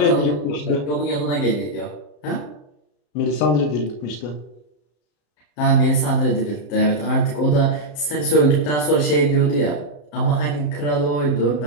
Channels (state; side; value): late; right; 34 ms